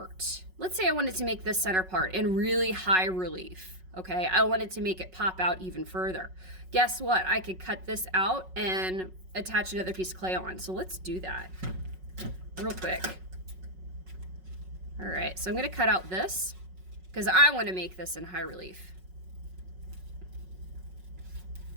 Let's say I wanted to make this center part in really high relief, okay? I wanted to make it pop out even further. Guess what? I could cut this out and attach another piece of clay on. So let's do that real quick. All right, so I'm gonna cut out this because I want to make this in high relief.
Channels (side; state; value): left; late; 5.4 ms